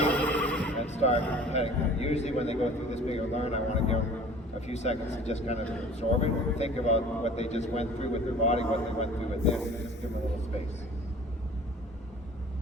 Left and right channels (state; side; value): normal; both; correlation 0.46